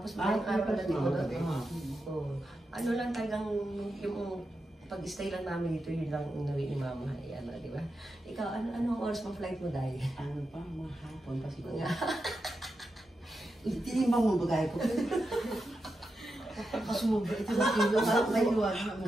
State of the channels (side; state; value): both; normal; correlation 0.88